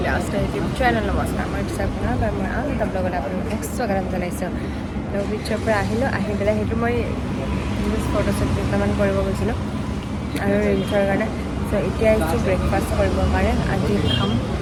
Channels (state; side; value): identical; both; correlation 1.00